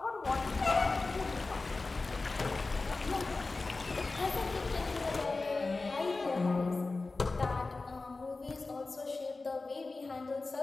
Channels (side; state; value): right; quieter; 3.6 dB